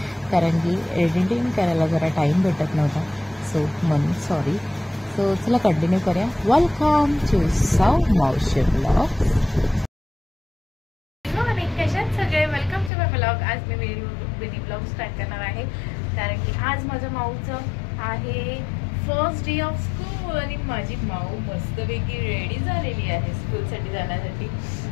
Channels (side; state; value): right; drops out; at 12.9 s